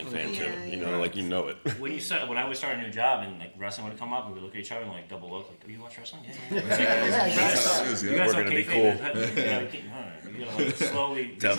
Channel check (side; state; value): both; inverted; correlation -1.00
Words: fan too. It. When I would start a new job and like wrestling would come up, we would look at each other and like double look, like, "Oh, you watch wrestling? Yeah." We're gonna be cool. You gotta like slowly.